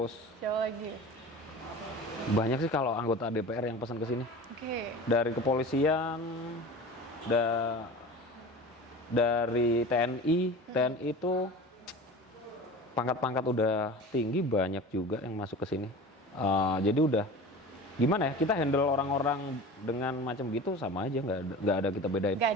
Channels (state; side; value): normal; both; correlation 0.35